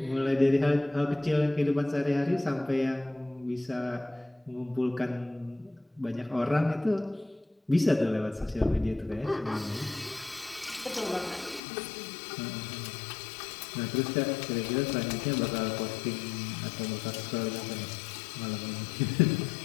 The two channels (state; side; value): drops out; right; at 11.6 s